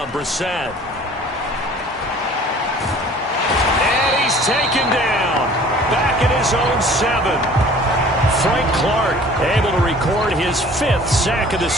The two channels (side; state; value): both; normal; correlation 0.49